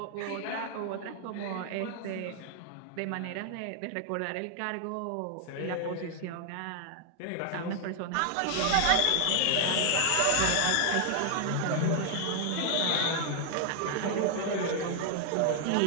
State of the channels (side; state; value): both; different; correlation 0.00